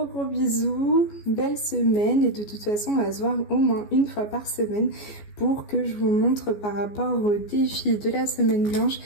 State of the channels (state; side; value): late; right; 14 ms